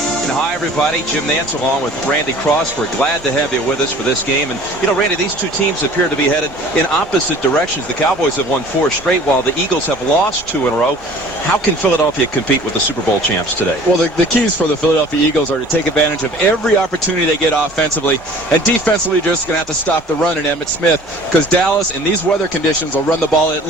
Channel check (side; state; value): both; normal; correlation 0.48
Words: And hi, everybody. Jim Nance along with Randy Cross. We're glad to have you with us for this game. And, you know, Randy, these two teams appear to be headed in opposite directions. The Cowboys have won 4 straight, while the Eagles have lost 2 in a row. How can Philadelphia compete with the Super Bowl champs today? Well, the keys for the Philadelphia Eagles are to take advantage of every opportunity they get offensively. And defensively, you're just going to have to stop the run in Emmitt Smith, because Dallas, in these weather conditions, will run the ball at